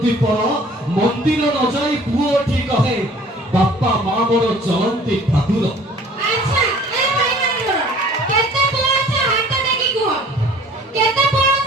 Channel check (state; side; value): normal; both; correlation 0.51